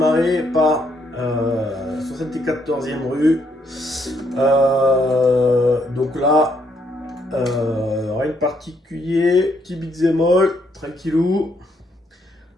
par 74e rue. Donc là, rien de particulier. Petit beat'em all, tranquillou.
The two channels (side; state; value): both; normal; correlation 0.73